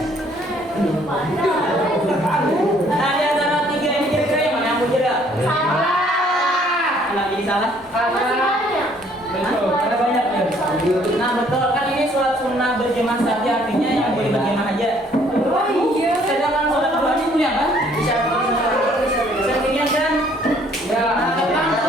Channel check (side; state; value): both; normal; correlation 0.62